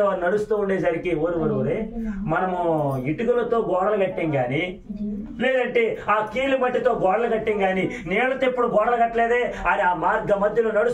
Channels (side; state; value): both; identical; correlation 1.00